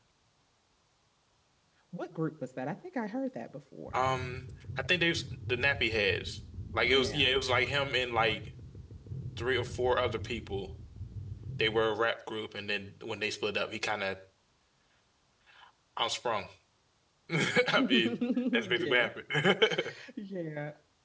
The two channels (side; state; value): both; identical; correlation 1.00